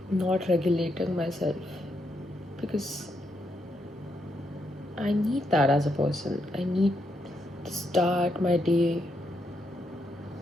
not regulating myself? Because I need that as a person. I need to start my day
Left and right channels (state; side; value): normal; both; correlation 0.79